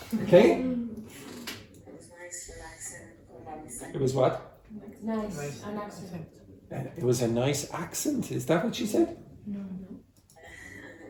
okay? It was nice, relaxing. Hold on a second. It was what? Nice, an accent. And it was a nice accent, is that what she said? And it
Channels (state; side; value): identical; both; correlation 1.00